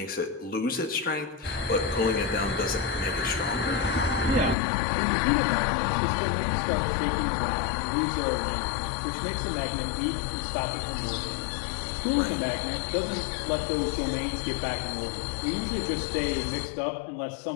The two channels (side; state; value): right; drops out; at 4.5 s